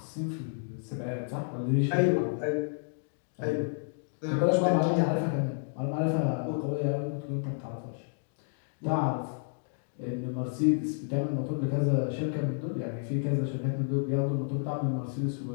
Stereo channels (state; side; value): silent; right; digital silence